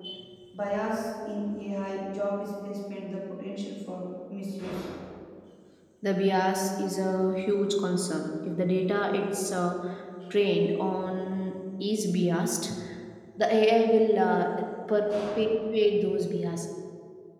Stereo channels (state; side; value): identical; both; correlation 1.00